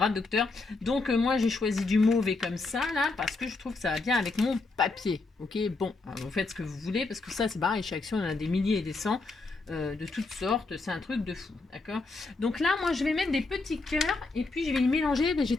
docteur. Donc moi j'ai choisi du mauve et comme ça là, parce que je trouve que ça va bien avec mon papier. Ok, bon, alors, vous faites ce que vous voulez, parce que ça c'est pareil, chez Action, on en a des milliers et des cents. De toutes sortes, c'est un truc de fou, d'accord? Donc là, moi, je vais mettre des petits cœurs et puis je vais les mélanger. Ben, j'ai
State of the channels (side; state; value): right; quieter; 3.6 dB